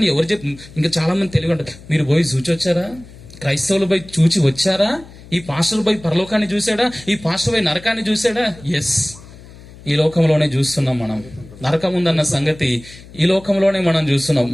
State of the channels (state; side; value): noise; left; hum, 20 dB below the sound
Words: ఎవరు ఇంకా చాలా మంది తెలివి ఉంటారు. మీరు పోయి చూచి వచ్చారా? క్రైస్తవులు పోయి చూచి వచ్చారా? ఈ పాస్టర్ పోయి పరలోకాన్ని చూసాడా? ఈ పాస్టర్ పోయి నరకాన్ని చూసాడా? ఎస్, ఈ లోకంలోనే చూస్తున్నాం మనం. నరకం ఉందన్న సంగతి ఈ లోకంలోనే మనం చూస్తున్నాం.